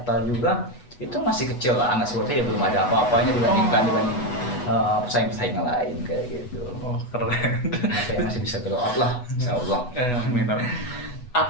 juga itu masih kecil lah, anak seperti ya belum ada apa-apanya dibanding pesaing-pesaing yang lain kayak gitu. Keren. Makanya masih bisa grow up lah, insyaallah. Amin.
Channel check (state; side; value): late; right; 8.1 ms